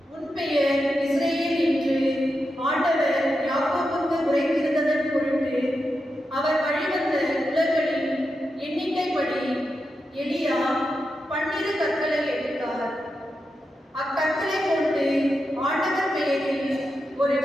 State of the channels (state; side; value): normal; both; correlation 0.88